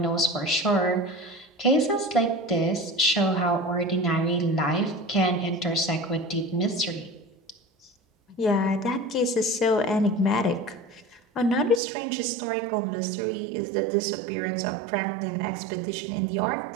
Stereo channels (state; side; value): drops out; left; at 11.8 s